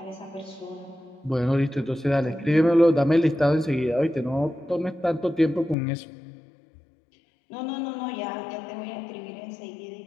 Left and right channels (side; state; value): right; drops out; at 5.8 s